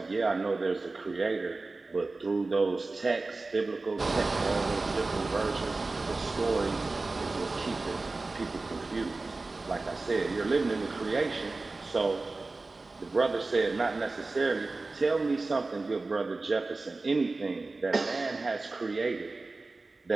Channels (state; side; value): quieter; left; 3.5 dB